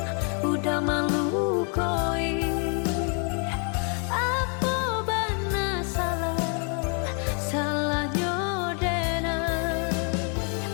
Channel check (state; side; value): quieter; right; 39.6 dB